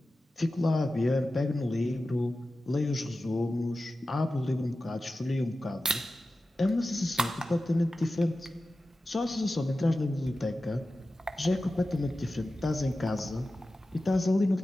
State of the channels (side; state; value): both; normal; correlation 0.94